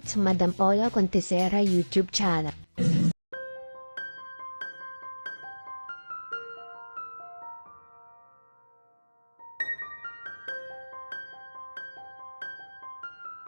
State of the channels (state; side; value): inverted; both; correlation -1.00